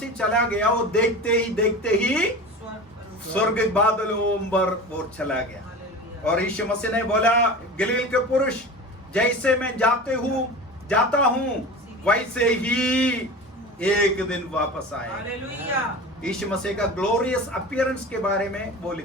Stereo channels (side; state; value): both; normal; correlation 0.33